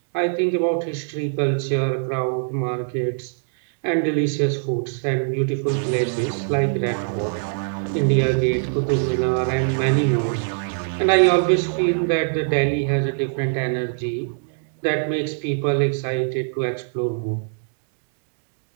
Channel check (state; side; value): silent; left; digital silence